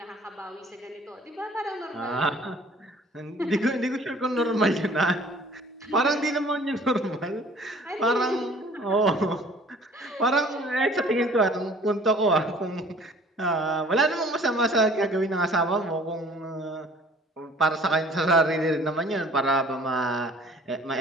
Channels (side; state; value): both; normal; correlation 0.52